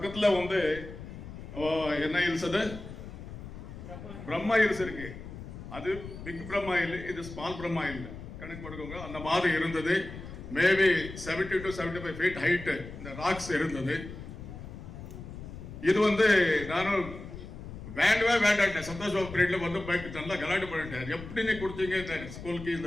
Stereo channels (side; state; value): left; noise; rumble, 12 dB below the sound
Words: வந்து என்ன ஹில்ஸ், அது பிரம்மா ஹில்ஸ் இருக்கு. அது பிக் பிரம்மா ஹில், இது ஸ்மால் பிரம்மா ஹில் கணக்கு போட்டுக்கோங்க. அந்த மாதிரி இருந்தது. மேபி 70 to 75 feet ஹைட் இந்த ராக்ஸ் இருந்தது. இது வந்து நானும் வேண்டாம் சந்தோஷ் பாபு பீரியட்ல வந்து பைக் நல்லா கலாட்டு பண்ணிட்டேன். எப்படி நீ கொடுத்தீங்க இந்த ஸ்கூலுக்கு